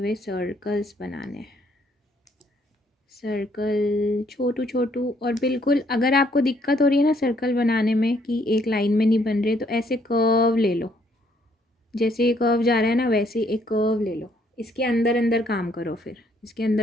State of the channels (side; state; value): both; normal; correlation 0.68